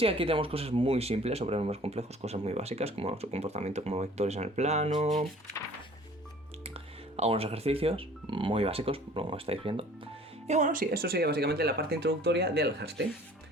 aquí tenemos cosas muy simples sobre números complejos, cosas muy básicas, como su comportamiento como vectores en el plano. Algunos ejercicios muy básicos, como estáis viendo. Y bueno, sí, eso sería básicamente la parte introductoria de Alhasty.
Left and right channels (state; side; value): normal; both; correlation 0.51